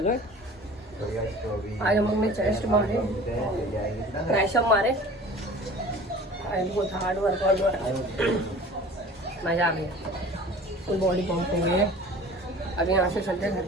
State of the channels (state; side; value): normal; both; correlation 0.43